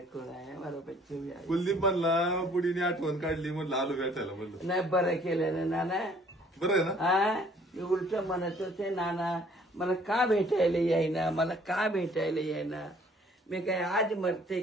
कोण आहे हमारा बच्चे भी आए. कुलदीप म्हणला बुडीने आठवण काढली म्हणलं आलो भेटायला म्हणलं. नाही बरं केलं ना नाना. बरं आहे ना? हा उलट म्हणत होते नाना मला का भेटायला येईना मला का भेटायला येईना. मी काय आज मरते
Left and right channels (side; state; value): both; normal; correlation 0.58